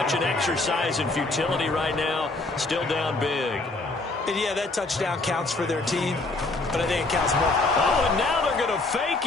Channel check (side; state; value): right; quieter; 3.2 dB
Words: an exercise in futility right now. Still down big. And yeah, that touchdown counts for their team, but I think it counts more. Oh, and now they're going to